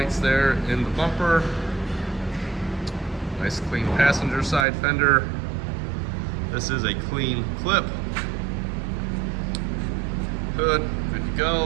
there in the bumper. Nice clean passenger side fender. This is a clean clip. Hood, good to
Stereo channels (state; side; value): drops out; left; at 4.7 s